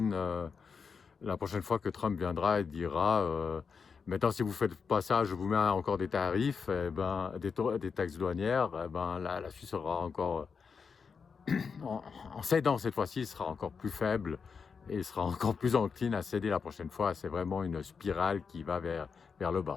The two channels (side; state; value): right; quieter; 5.7 dB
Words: fois que Trump viendra et dira maintenant, si vous faites pas ça, je vous mets encore des tarifs, des taxes douanières, la Suisse sera encore, en cédant cette fois-ci, sera encore plus faible et sera encore plus encline à céder la prochaine fois. C'est vraiment une spirale qui va vers le